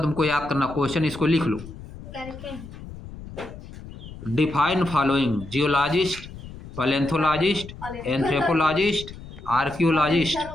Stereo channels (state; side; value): noise; left; rumble, 14 dB below the sound